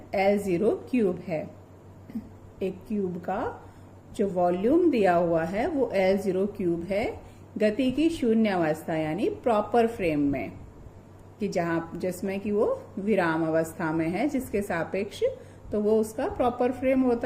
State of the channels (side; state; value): both; identical; correlation 1.00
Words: L0 क्यूब है। एक क्यूब का जो वॉल्यूम दिया हुआ है वो L0 क्यूब है, गति की शून्य अवस्था यानी प्रॉपर फ्रेम में, कि जिसमें कि वो विराम अवस्था में है, जिसके सापेक्ष तो वो उसका प्रॉपर फ्रेम